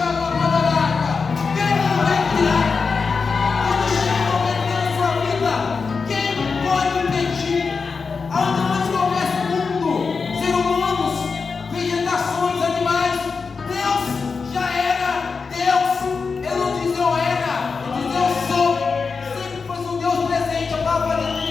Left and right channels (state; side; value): quieter; right; 4.9 dB